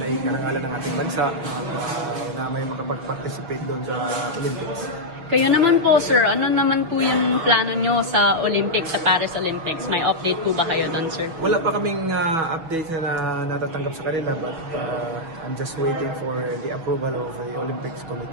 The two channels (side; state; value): left; late; 6.0 ms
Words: ay karangalan ng ating bansa na may makapag-participate doon sa Olympics. Kayo naman po, sir, ano naman po yung plano nyo sa Olympics, sa Paris Olympics? May update po ba kayo doon, sir? Wala pa kaming update na natatanggap sa kanila but I'm just waiting for the approval of the Olympics